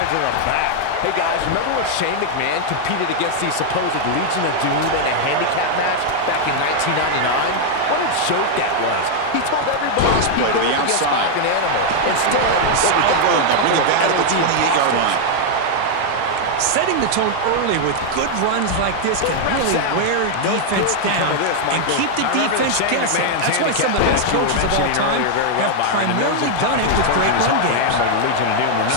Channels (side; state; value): both; different; correlation 0.00